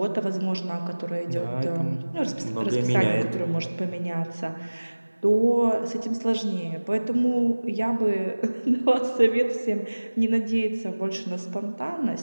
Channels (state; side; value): inverted; both; correlation -1.00